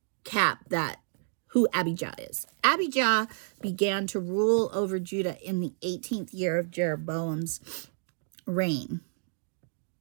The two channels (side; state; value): left; silent; digital silence